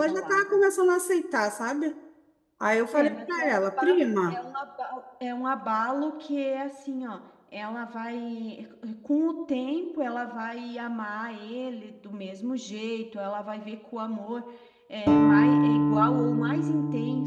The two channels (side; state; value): both; identical; correlation 1.00